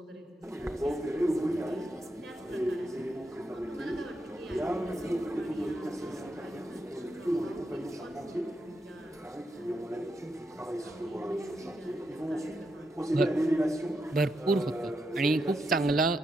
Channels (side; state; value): both; normal; correlation 0.83